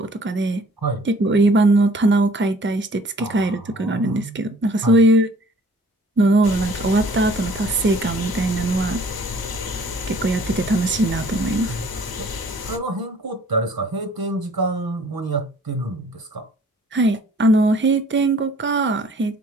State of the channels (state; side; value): normal; both; correlation 0.55